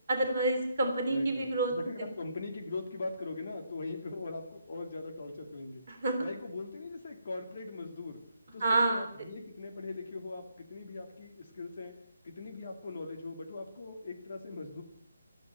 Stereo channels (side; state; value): both; inverted; correlation -0.75